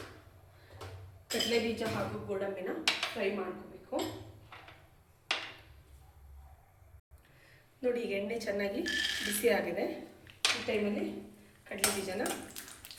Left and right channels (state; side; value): identical; both; correlation 1.00